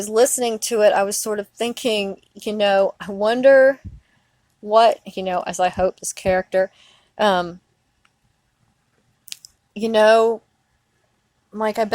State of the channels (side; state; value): both; identical; correlation 1.00